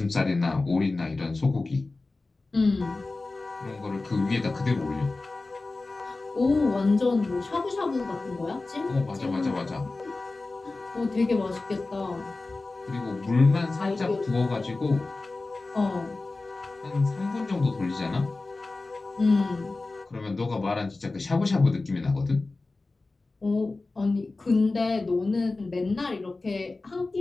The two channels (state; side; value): quieter; right; 3.4 dB